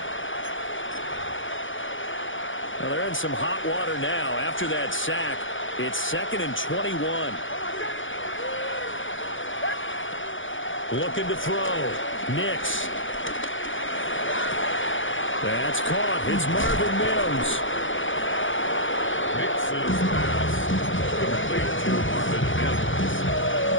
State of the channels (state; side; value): late; right; 0.56 ms